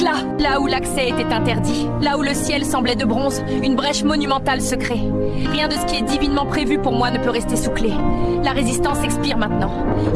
Là où l'accès était interdit, là où le ciel semblait de bronze, une brèche monumentale se crée. Rien de ce qui est divinement prévu pour moi ne peut rester sous clé. La résistance expire maintenant.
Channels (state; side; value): identical; both; correlation 1.00